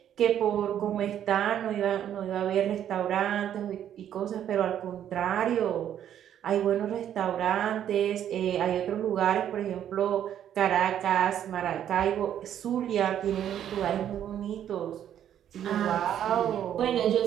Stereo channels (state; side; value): quieter; left; 10.2 dB